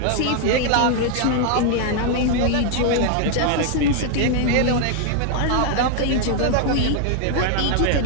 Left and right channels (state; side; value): different; both; correlation 0.00